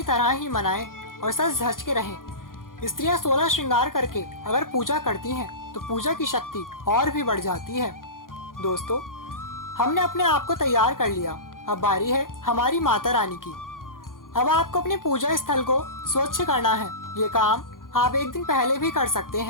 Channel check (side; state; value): right; late; 0.90 ms